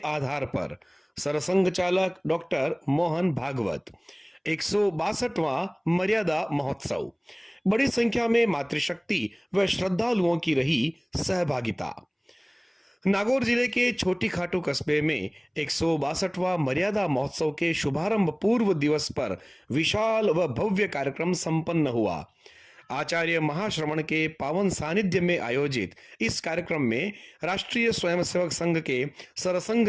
आधार पर। सरसंघ चालक डॉक्टर मोहन भागवत। 162वां मर्यादा महोत्सव। बड़ी संख्या में मातृशक्ति व श्रद्धालुओं की रही सहभागिता। नागौर जिले के छोटी खाटू कस्बे में 162वां मर्यादा महोत्सव के शुभारंभ पूर्व दिवस पर विशाल व भव्य कार्यक्रम संपन्न हुआ। आचार्य महाश्रमण के पावन सानिध्य में आयोजित इस कार्यक्रम में राष्ट्रीय स्वयंसेवक संघ के सरसंघ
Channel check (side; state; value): both; identical; correlation 1.00